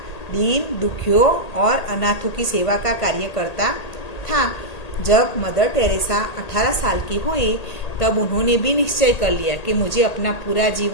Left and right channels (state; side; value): late; right; 1.8 ms